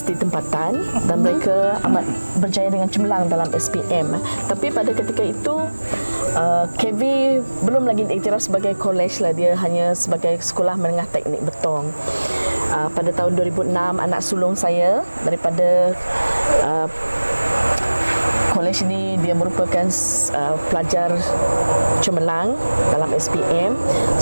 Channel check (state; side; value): inverted; both; correlation -1.00